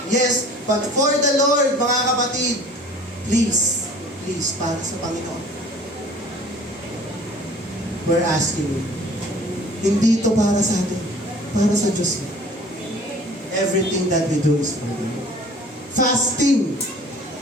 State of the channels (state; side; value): normal; both; correlation 0.48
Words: Yes, but for the Lord, mga kapatid, please, para sa Panginoon. We're asking you. Hindi ito para sa atin. Para sa Diyos. Everything that we do is for Him. Fasting.